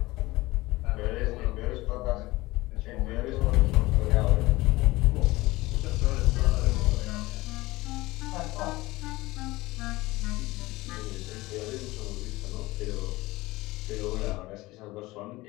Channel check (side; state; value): right; quieter; 19.9 dB